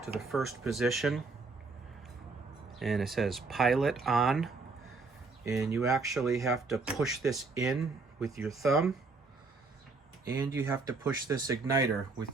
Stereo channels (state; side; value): quieter; left; 4.0 dB